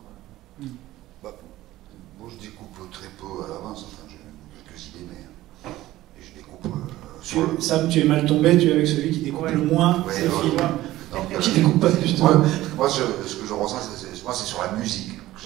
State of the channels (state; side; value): quieter; left; 15.9 dB